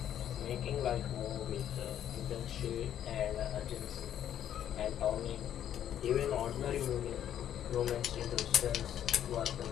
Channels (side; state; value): right; quieter; 10.4 dB